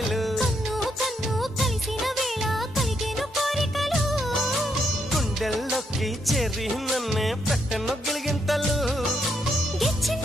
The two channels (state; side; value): normal; both; correlation 0.77